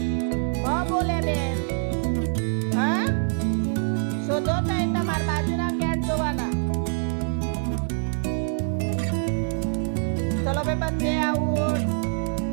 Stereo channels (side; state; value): left; silent; 57 dB below the other